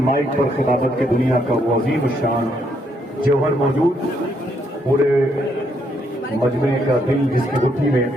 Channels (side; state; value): both; normal; correlation 0.74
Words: مائک پر خطابت کے دنیا کا وہ عظیم الشان جوہر موجود، پورے مجمع کا دل جس کی گٹھی میں